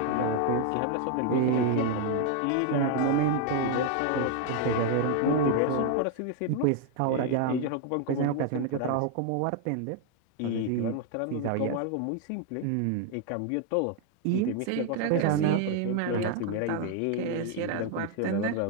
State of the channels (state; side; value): different; both; correlation 0.00